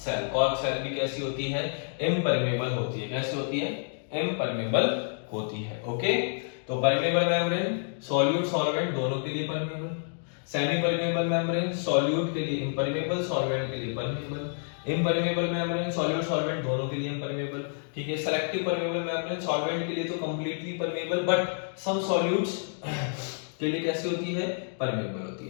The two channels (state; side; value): silent; right; digital silence